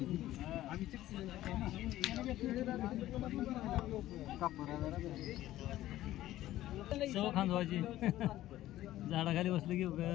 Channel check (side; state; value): right; quieter; 14.6 dB